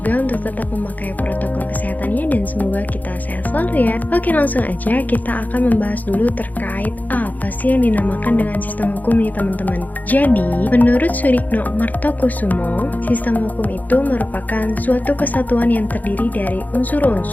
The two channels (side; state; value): right; late; 0.081 ms